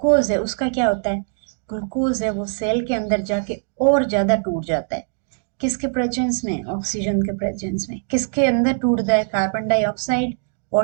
है, उसका क्या होता है? ग्लूकोज है वो सेल के अंदर जाके और ज्यादा टूट जाता है। किसके प्रेजेंस में? ऑक्सीजन के प्रेजेंस में। किसके अंदर टूटता है? Carbon dioxide,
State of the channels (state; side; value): silent; left; digital silence